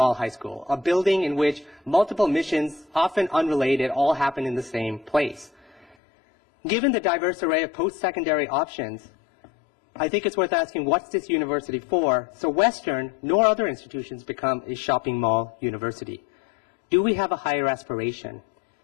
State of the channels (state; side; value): drops out; right; at 6.0 s